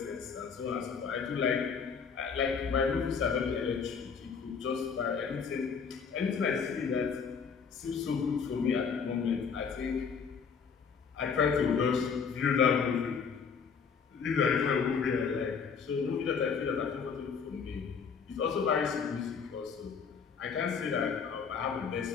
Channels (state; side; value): quieter; right; 6.1 dB